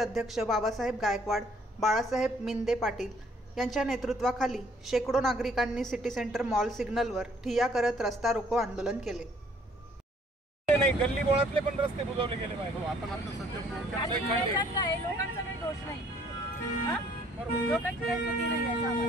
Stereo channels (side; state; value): both; normal; correlation 0.61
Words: बाबासाहेब गायकवाड, बाळासाहेब मिंदे पाटील यांच्या नेतृत्वाखाली शेकडो नागरिकांनी सिटी सेंटर मॉल सिग्नलवर ठिय्या करत रस्ता रोको आंदोलन केले. नाही, गल्ली बोळातले पण रस्ते बुजवले गेले पाहिजे. आपण आता सध्या लोकांचा काही दोष नाही. लोकांची काही चुकी नाही आहे.